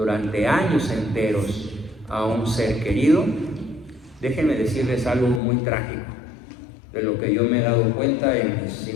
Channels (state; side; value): drops out; right; at 5.4 s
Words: años enteros a un ser querido, déjenme decirles algo muy trágico, de lo que yo me he dado cuenta en mis